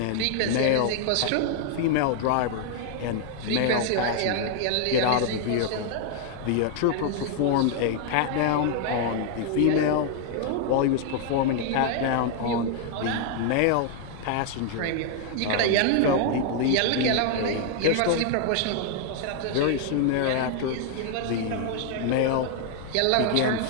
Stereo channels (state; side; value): different; both; correlation 0.00